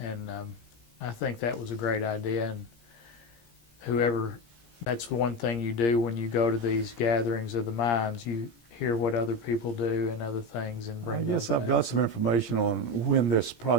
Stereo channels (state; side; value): late; right; 17 ms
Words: and I think that was a great idea. And whoever, that's one thing you do when you go to these gatherings of the minds, you hear what other people do and other things, and bring. I guess I've got some information on when this